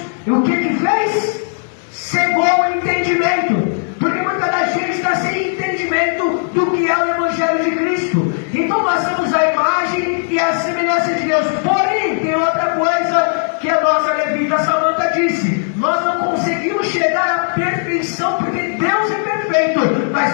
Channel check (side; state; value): right; silent; digital silence